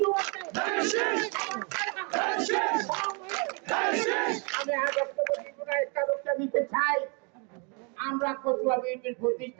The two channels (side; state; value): left; quieter; 34.7 dB